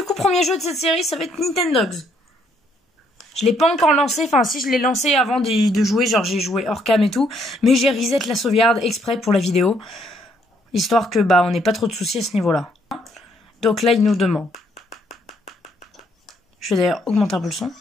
coup premier jeu de cette série ça va être Nintendogs. Je l'ai pas encore lancé, enfin si je l'ai lancé avant de jouer, genre j'ai joué hors cam et tout, mais j'ai reset la sauvegarde exprès pour la vidéo, histoire que on n'ait pas trop de soucis à ce niveau-là. Donc là il nous demande. Je vais d'ailleurs augmenter un peu le son.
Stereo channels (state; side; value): normal; both; correlation 0.69